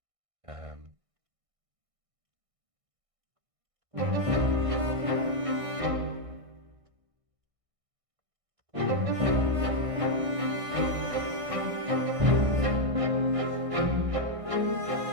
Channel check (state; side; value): late; left; 1.6 ms